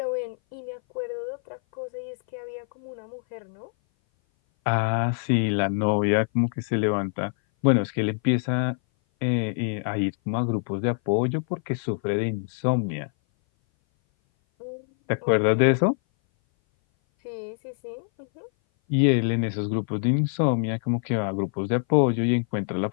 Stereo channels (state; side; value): silent; right; 58 dB below the other